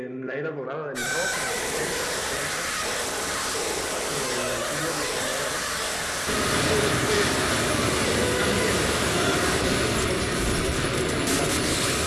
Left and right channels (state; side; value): identical; both; correlation 1.00